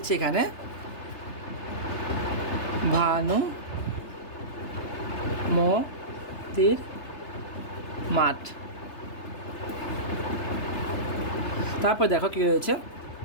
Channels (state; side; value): late; right; 3.3 ms